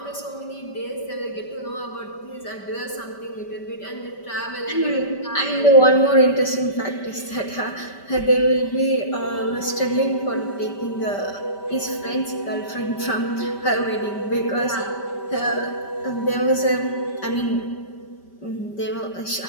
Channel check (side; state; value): right; late; 5.1 ms